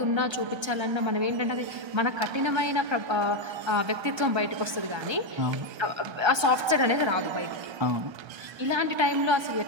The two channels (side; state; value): left; late; 1.3 ms